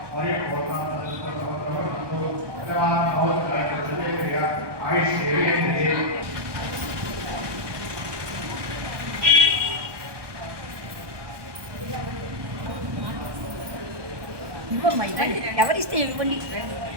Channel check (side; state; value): left; late; 1.2 ms